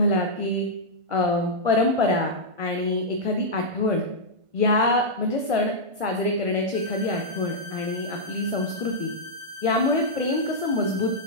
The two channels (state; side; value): late; left; 1.5 ms